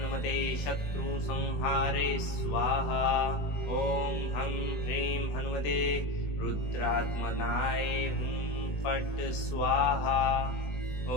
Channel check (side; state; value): right; late; 20 ms